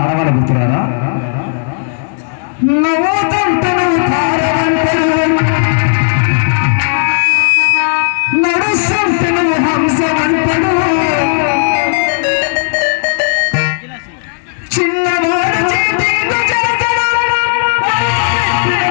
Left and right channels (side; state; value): right; silent; digital silence